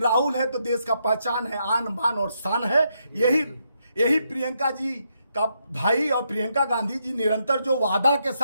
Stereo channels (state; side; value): inverted; both; correlation -0.79